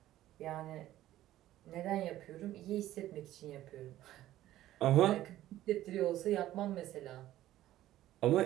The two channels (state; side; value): quieter; left; 14.1 dB